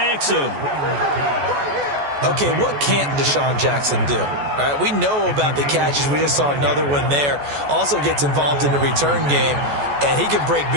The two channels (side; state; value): left; late; 14 ms